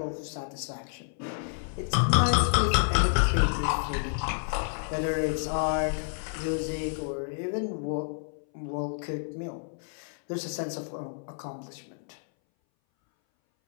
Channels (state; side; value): silent; right; 58 dB below the other